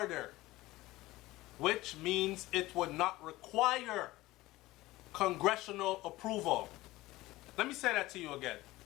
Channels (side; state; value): right; quieter; 18.4 dB